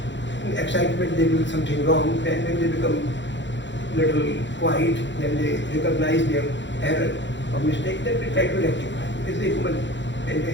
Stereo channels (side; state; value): right; late; 0.53 ms